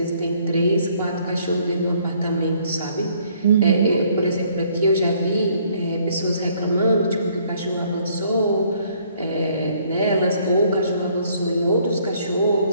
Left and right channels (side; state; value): both; inverted; correlation -0.63